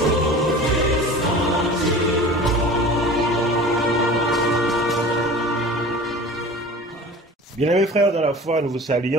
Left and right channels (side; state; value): both; normal; correlation 0.39